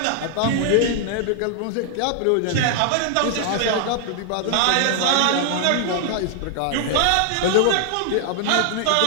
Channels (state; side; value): different; both; correlation 0.00